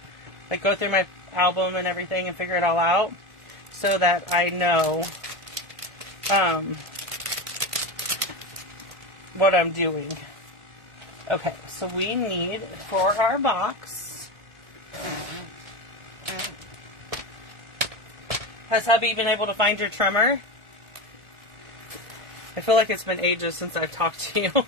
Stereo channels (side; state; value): left; late; 1.4 ms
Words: Like, go through my album and everything and figure it all out so that I know what I'm doing. Okay, so we need, for our box, has hubby been able to find your trimmer? I feel like it's been ages since I've talked to you.